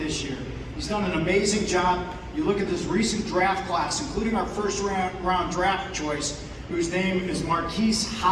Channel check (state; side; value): identical; both; correlation 1.00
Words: year. He's done an amazing job. You look at this recent draft class, including our first round draft choice, whose name is Marquise